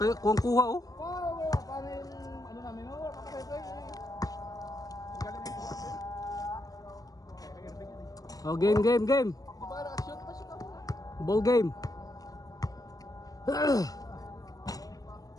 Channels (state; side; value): late; right; 0.18 ms